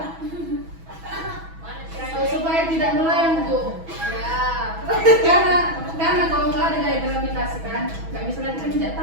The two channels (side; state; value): left; late; 6.1 ms